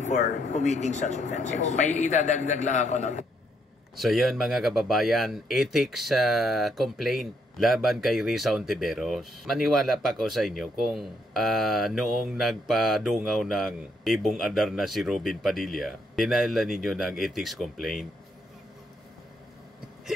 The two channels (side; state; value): both; normal; correlation 0.73